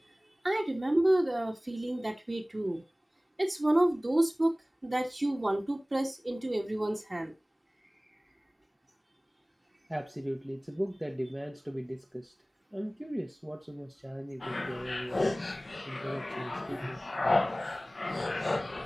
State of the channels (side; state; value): both; normal; correlation 0.98